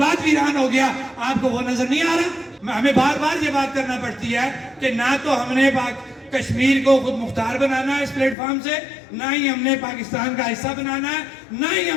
ویران ہو گیا، آپ کو وہ نظر نہیں آ رہا؟ ہمیں بار بار یہ بات کرنا پڑتی ہے کہ نہ تو ہم نے کشمیر کو خود مختار بنانا ہے اس پلیٹ فارم سے، نہ ہی ہم نے پاکستان کا حصہ بنانا ہے، نہ ہی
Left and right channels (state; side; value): drops out; right; at 8.3 s